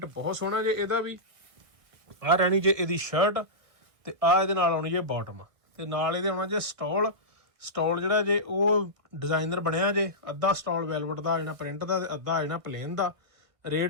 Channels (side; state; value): left; late; 1.3 ms